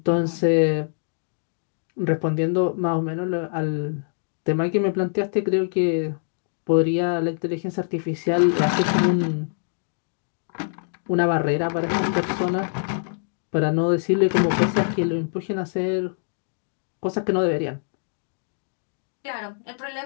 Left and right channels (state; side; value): silent; right; digital silence